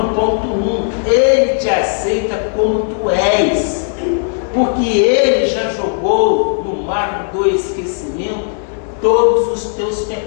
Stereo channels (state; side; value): silent; right; 69 dB below the other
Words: ponto 1, Ele te aceita como tu és, porque Ele já jogou no mar do esquecimento todos os teus